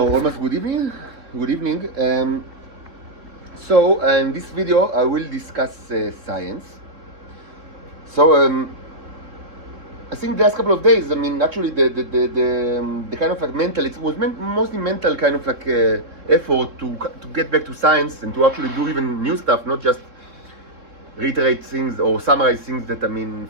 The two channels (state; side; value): late; left; 3.7 ms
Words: almost good evening. Good evening. So in this video I will discuss science. So I think the last couple of days, I mean, actually the kind of like mental, it was mostly mental kind of like effort to get back to science and to actually do even new stuff, not just reiterate things or summarize things that, I mean,